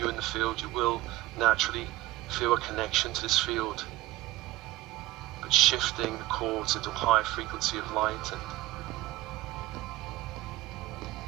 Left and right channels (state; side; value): quieter; left; 17.8 dB